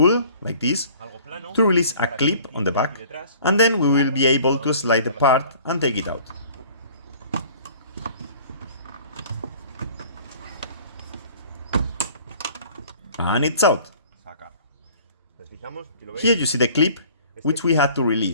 like this, to release a clip on the back, and then we will be able to slide the part and take it out. And it's out. Here you see the clip which we had to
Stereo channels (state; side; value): inverted; both; correlation -0.50